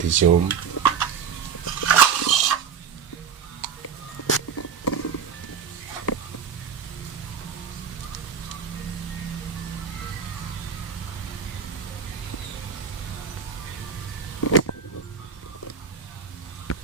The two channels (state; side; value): quieter; left; 6.8 dB